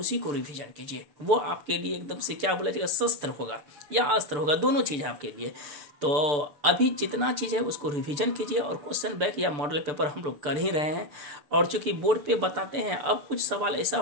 को रिविजन कीजिए। वो आपके लिए एकदम से क्या बोला जाएगा, शस्त्र होगा या अस्त्र होगा, दोनों चीज़ है आपके लिए। तो अभी जितना चीज़ है उसको रिवीजन कीजिए और क्वेश्चन बैंक या मॉडल पेपर हम लोग कर ही रहे हैं। और चूंकि बोर्ड पे बताते हैं, अब कुछ सवाल ऐसा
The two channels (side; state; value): left; late; 6.9 ms